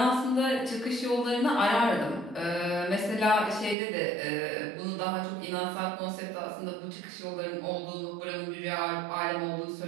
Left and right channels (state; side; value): drops out; left; at 3.8 s